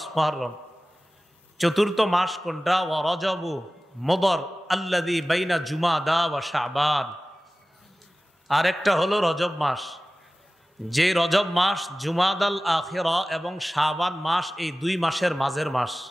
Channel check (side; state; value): both; normal; correlation 0.97